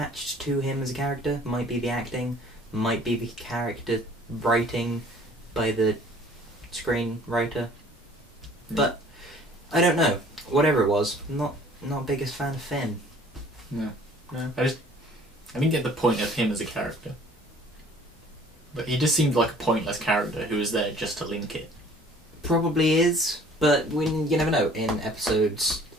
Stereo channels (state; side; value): normal; both; correlation 0.52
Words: to him as a character. Might be the acting, might be the character writing by the screenwriter. But, I don't know. Whatever it was, not biggest fan of Finn. No. I didn't get the point of him as a character. But he just seemed like a pointless character who was there just to link it. Probably is, but you never know. In episodes